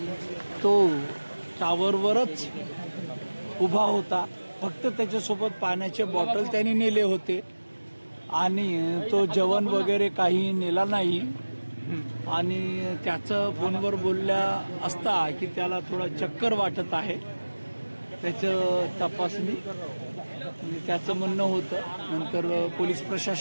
तो टावरवरच उभा होता. फक्त त्याच्यासोबत पाण्याचे बॉटल त्यांनी नेले होते आणि तो जेवण वगैरे काही नेला नाही. आणि त्याचं फोनवर बोलल्या असता की त्याला थोडा चक्कर वाटत आहे. त्याचं तपासणी त्याचं म्हणणं होतं. नंतर पोलीस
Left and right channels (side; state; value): both; inverted; correlation -1.00